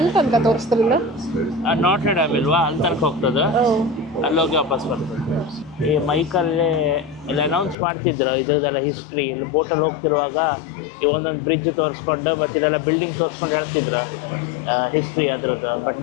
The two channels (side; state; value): right; drops out; at 7.8 s